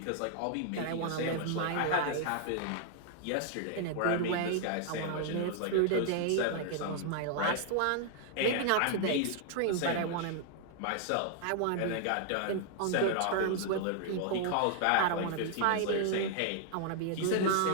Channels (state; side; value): different; both; correlation 0.00